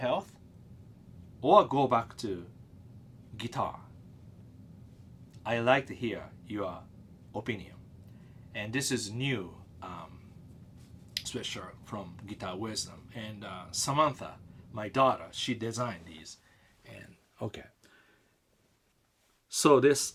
or go back to guitar? I like to hear your opinion. And this is new sweatshirt from Guitar Wisdom. And Samantha, my daughter, she designed these. And okay. So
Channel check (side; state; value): both; identical; correlation 1.00